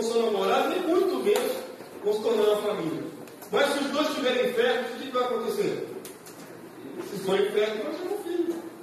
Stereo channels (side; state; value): both; identical; correlation 1.00